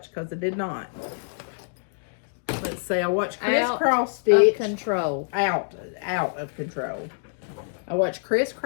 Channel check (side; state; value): right; silent; digital silence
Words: Because I did not. Let's see. I watched Crisscross Stitch. Of control. Out of control. I watched